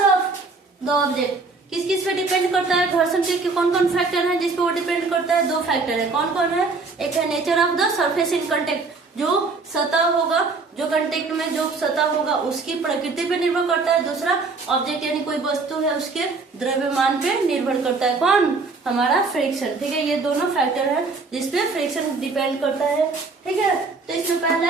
द ऑब्जेक्ट। किस किस पे डिपेंड करता है, घर्षण के कौन कौन फैक्टर है जिस पे वो डिपेंड करता है, 2 फैक्टर है। कौन कौन है, एक है nature of the surface in contact, जो सतह होगा, जो कांटेक्ट में जो सतह होगा उसकी प्रकृति पे निर्भर करता है। दूसरा ऑब्जेक्ट यानी कोई वस्तु है उसके द्रव्यमान पे निर्भर करता है, कौन, हमारा फ्रिक्शन, ठीक है। ये दोनों फैक्टर है जिसपे फ्रिक्शन डिपेंड करता है, ठीक है। तो इसमें पहला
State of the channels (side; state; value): left; quieter; 4.0 dB